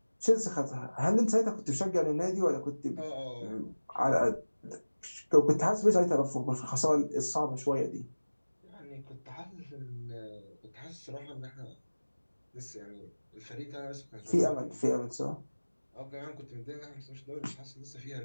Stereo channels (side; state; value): both; inverted; correlation -1.00